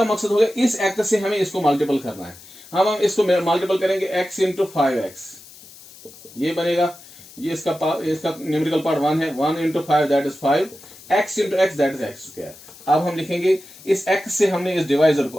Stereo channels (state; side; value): noise; left; hiss, 20 dB below the sound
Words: मकसद हो गया इस x से हमें इसको मल्टीपल करना है, हम इसको मल्टीपल करेंगे x इंटू 5x, ये बनेगा, ये इसका न्यूमेरिकल पार्ट 1 है, 1 into 5 that is 5, x into x that is x²। अब हम लिखेंगे इस x से हमने इस डिवाइजर को,